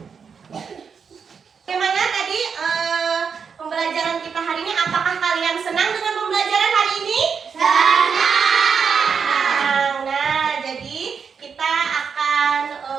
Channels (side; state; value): left; quieter; 6.2 dB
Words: Bagaimana tadi pembelajaran kita hari ini? Apakah kalian senang dengan pembelajaran hari ini? Senang. Nah, jadi kita akan